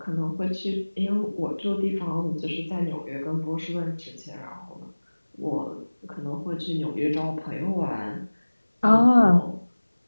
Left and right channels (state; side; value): inverted; both; correlation -1.00